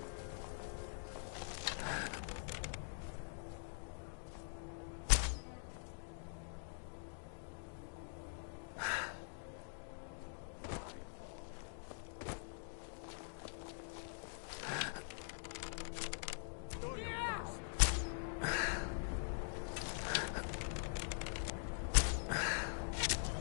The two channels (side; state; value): right; silent; digital silence